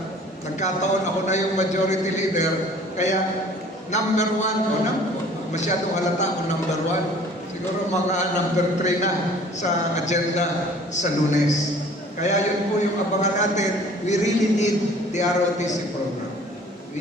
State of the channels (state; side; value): normal; both; correlation 0.51